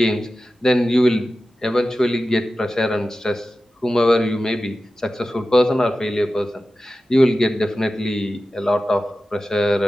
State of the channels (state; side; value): normal; both; correlation 0.94